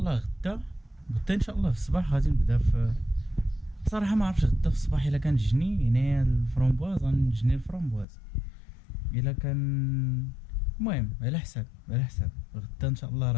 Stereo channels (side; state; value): right; drops out; at 8.1 s